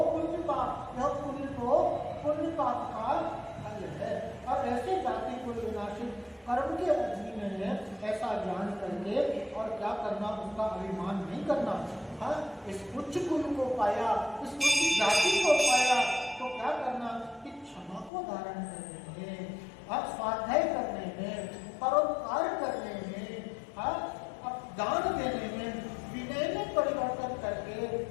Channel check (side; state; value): right; drops out; at 18.1 s